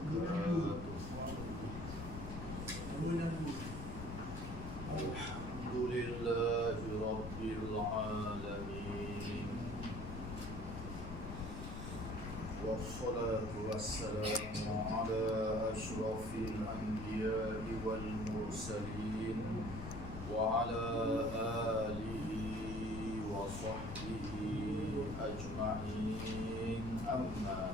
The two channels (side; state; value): left; noise; rumble, 7 dB below the sound